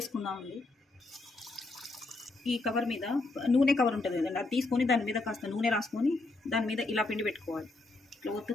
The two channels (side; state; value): right; quieter; 3.2 dB